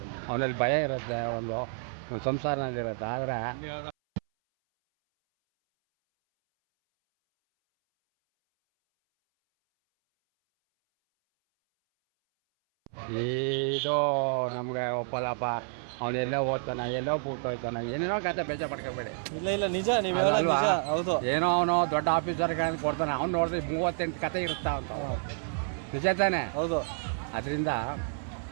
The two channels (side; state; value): left; silent; 58 dB below the other